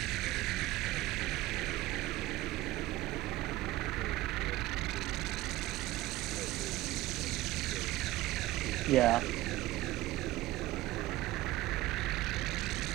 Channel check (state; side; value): quieter; left; 17.0 dB